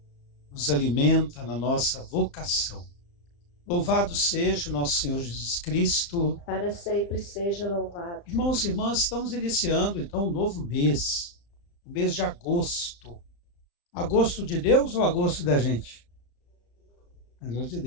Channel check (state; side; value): late; right; 35 ms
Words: nos alimenta na nossa vocação. Louvado seja o nosso Senhor Jesus Cristo. Para sempre seja louvado. Irmãos e irmãs, estamos iniciando então um novo mês, o mês de agosto. Agosto de Deus ou agosto da gente? Agosto de